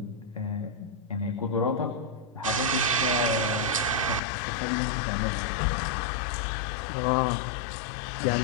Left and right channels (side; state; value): right; drops out; at 4.2 s